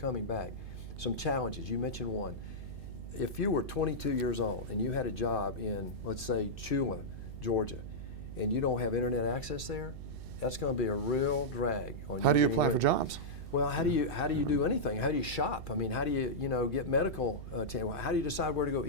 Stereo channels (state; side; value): noise; right; hum, 10 dB below the sound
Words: back. Some challenges, you mentioned one. If you were 22 years old and you had a job in, let's say, Chula, Georgia, and you don't have internet access there, that's going to be a real drag on you. How do you apply for jobs? Well, how do you do anything? How do you shop? I mean, how do you get medical how do you decide where to go